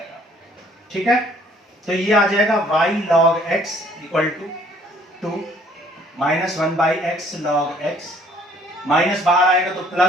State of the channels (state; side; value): normal; both; correlation 0.60